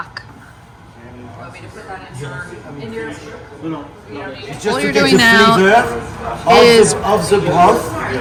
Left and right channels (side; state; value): both; identical; correlation 1.00